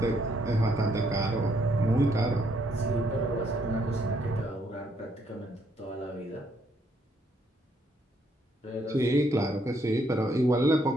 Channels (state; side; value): normal; both; correlation 0.71